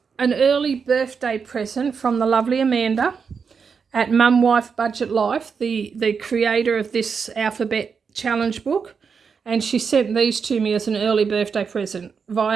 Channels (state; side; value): quieter; left; 5.9 dB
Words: early birthday present from the lovely Amanda at Mum Wife Budget Life, the creator of this alphabet challenge book. And she sent these to me as an early birthday present